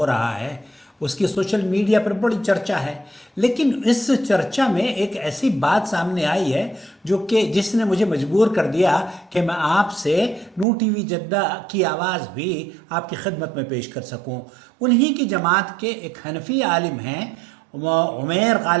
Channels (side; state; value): left; drops out; at 10.7 s